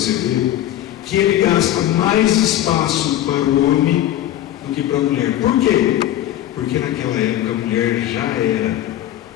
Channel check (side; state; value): right; quieter; 12.8 dB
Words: ver que ele gasta mais espaço para o homem do que para a mulher. Por quê? Porque naquela época a mulher já era